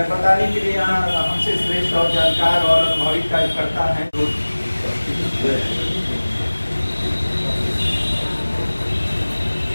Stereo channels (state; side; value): inverted; both; correlation -1.00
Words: के लिए यहाँ हमसे श्रेष्ठ और जानकार और अनुभवी कार्यकर्ता हैं।